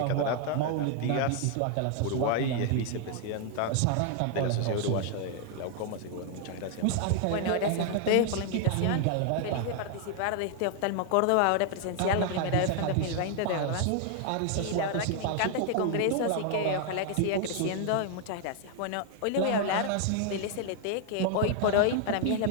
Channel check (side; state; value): both; different; correlation 0.00